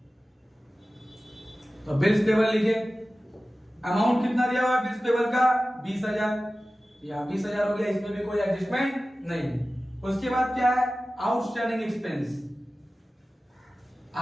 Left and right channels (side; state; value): both; normal; correlation 0.96